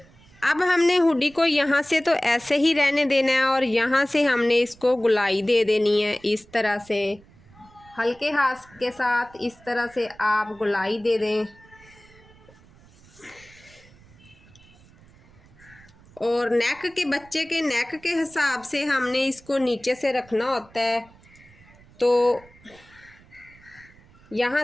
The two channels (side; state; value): right; noise; rumble, 26 dB below the sound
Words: अब हमने हुडी को यहाँ से तो ऐसे ही रहने देना है और यहाँ से हमने इसको गुलाई दे देनी है इस तरह से। हल्के हाथ के साथ इस तरह से आप गुलाई दे दें। और नेक के बच्चे के नेक के हिसाब से हमने इसको नीचे से रखना होता है। तो यहाँ